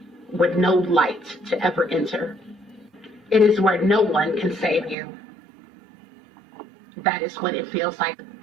with no light to ever enter. It is where no one can save you. That is what it feels like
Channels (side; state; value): left; drops out; at 5.0 s